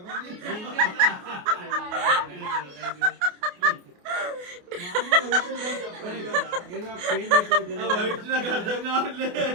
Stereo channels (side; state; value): left; late; 28 ms